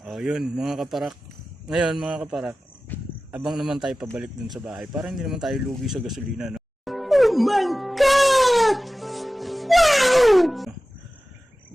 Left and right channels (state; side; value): normal; both; correlation 0.96